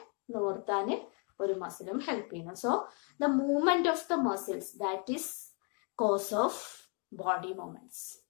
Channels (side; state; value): right; quieter; 37.6 dB